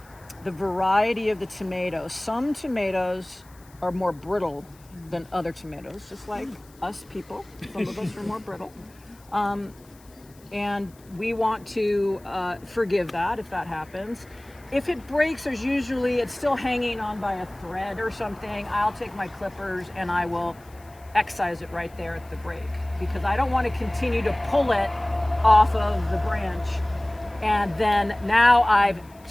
the variety of the tomatoes. Some tomatoes are more brittle than other tomatoes, just like us people. Some of us are more brittle. And we want to forgive that if that happens. If it breaks, it's still hanging on by a thread or something, I'll take my clippers and I will excise it right there at the break, because I don't want to continue to pull it off of the branch, and then now I've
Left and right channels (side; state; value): left; noise; hiss, 27 dB below the sound